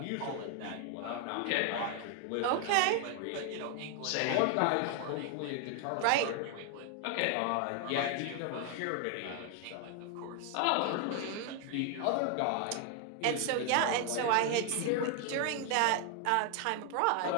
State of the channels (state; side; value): different; both; correlation 0.00